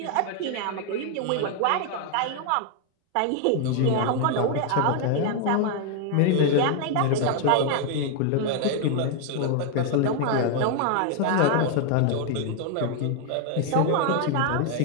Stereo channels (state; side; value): different; both; correlation 0.00